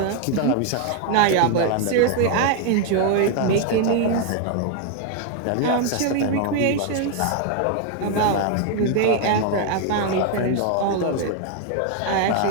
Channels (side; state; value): both; different; correlation 0.01